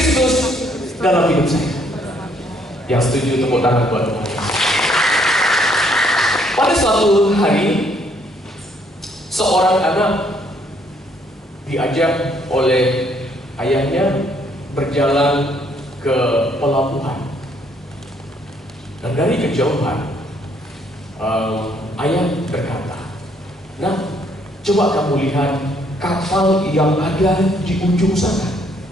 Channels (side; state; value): both; normal; correlation 0.67